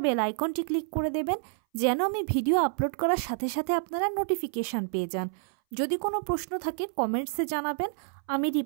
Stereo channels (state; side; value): silent; left; 59 dB below the other